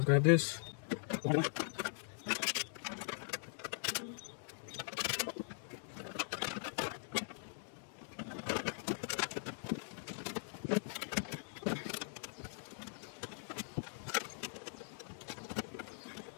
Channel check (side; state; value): right; silent; digital silence